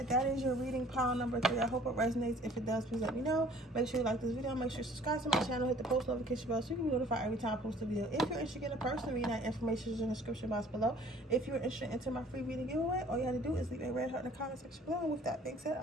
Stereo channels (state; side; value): normal; both; correlation 0.53